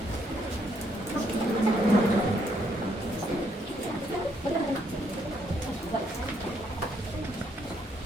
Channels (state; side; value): normal; both; correlation 0.72